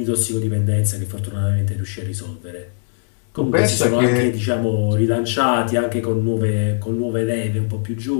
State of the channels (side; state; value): right; silent; 64 dB below the other